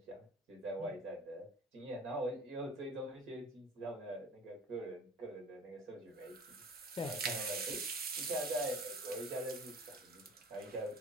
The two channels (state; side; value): normal; both; correlation 0.43